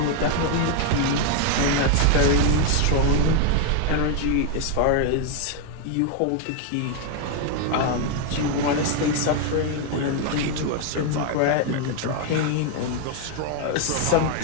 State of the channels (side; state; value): both; different; correlation 0.00